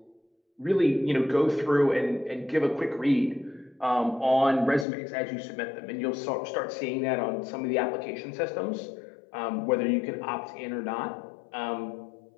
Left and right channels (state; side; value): drops out; right; at 4.9 s